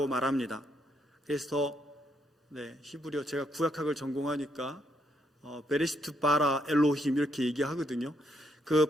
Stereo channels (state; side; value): normal; both; correlation 0.75